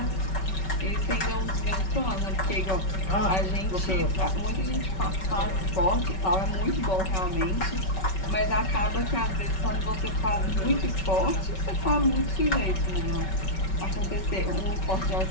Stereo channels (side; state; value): right; late; 5.3 ms